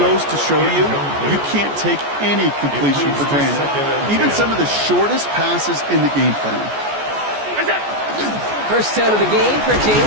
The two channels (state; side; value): late; left; 14 ms